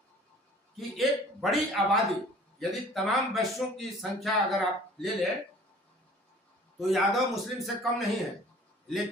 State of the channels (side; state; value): both; normal; correlation 0.49